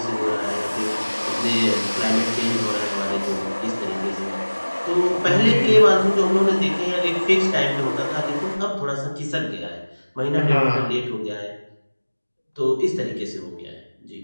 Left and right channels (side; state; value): both; inverted; correlation -1.00